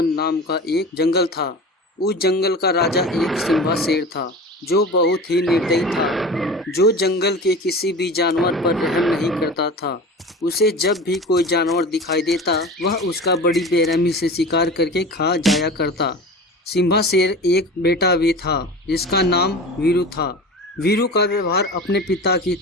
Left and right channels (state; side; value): normal; both; correlation 0.34